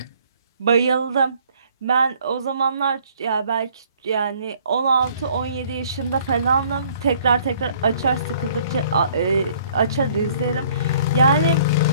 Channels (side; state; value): both; inverted; correlation -0.59